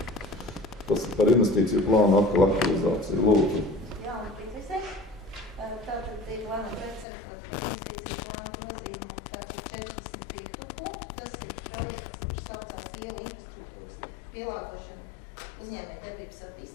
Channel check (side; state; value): right; drops out; at 7.1 s